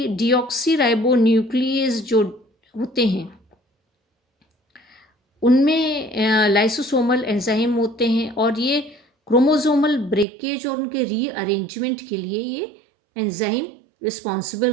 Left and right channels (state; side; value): drops out; left; at 10.2 s